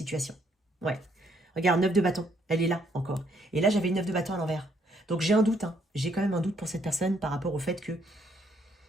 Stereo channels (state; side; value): normal; both; correlation 0.69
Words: Ouais. Regarde, 9 de bâton, elle est là encore. Et là j'avais le 9 de bâton à l'envers. Donc j'ai un doute, hein. J'ai quand même un doute pour cette personne par rapport au fait que